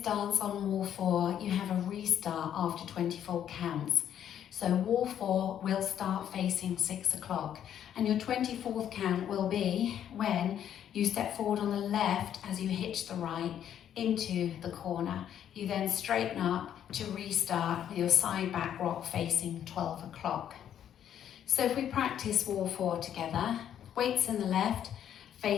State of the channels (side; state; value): right; quieter; 9.9 dB